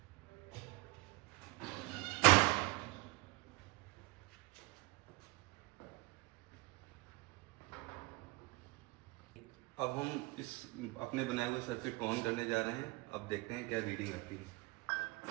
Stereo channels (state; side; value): quieter; left; 23.0 dB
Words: अब हम इस अपने बनाए हुए सर्किट को ऑन करने जा रहे हैं। अब देखते हैं क्या रीडिंग आती है।